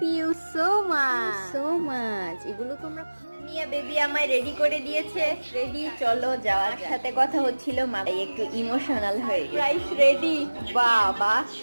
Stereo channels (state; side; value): inverted; both; correlation -1.00